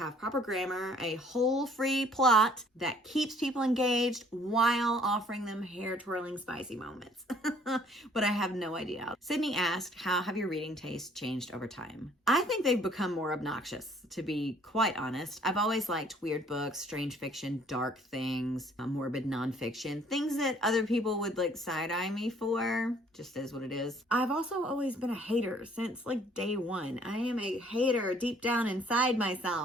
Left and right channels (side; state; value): both; normal; correlation 0.59